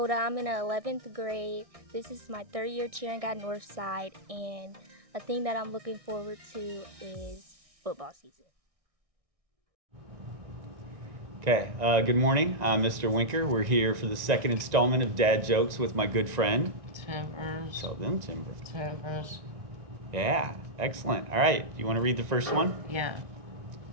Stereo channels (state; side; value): late; left; 1.6 ms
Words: I'm in 11th grade. This is my 3rd year cheering at Northside, and a thing that I'm looking forward to is football season. Okay, good morning. I'm Mr. Winker. We're here for the second installment of Dad Jokes with my good friend. Timbers. So then, Timbers. Timbers. Yeah, excellent. All right, you want to read the first one? Yeah.